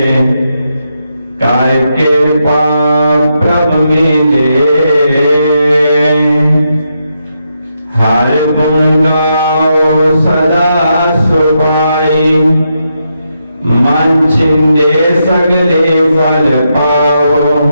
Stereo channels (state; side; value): inverted; both; correlation -0.82